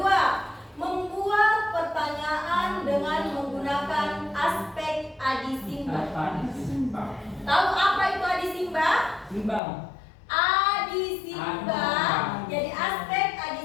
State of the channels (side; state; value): right; drops out; at 9.6 s